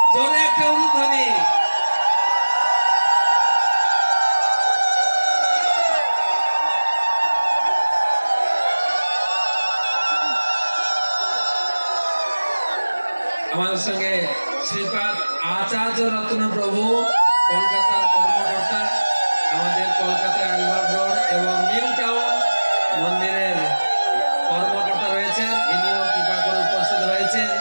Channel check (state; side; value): inverted; both; correlation -1.00